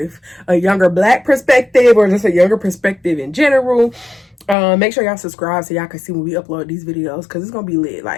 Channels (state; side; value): drops out; right; at 4.5 s